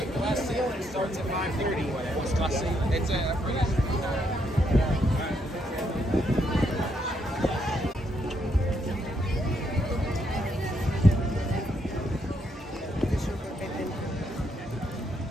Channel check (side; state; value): both; normal; correlation 0.76